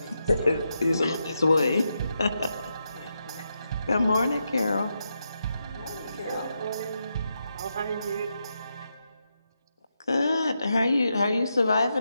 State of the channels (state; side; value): inverted; both; correlation -0.84